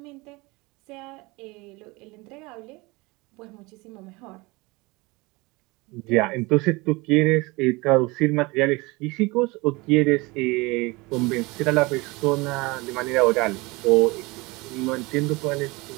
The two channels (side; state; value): left; quieter; 24.2 dB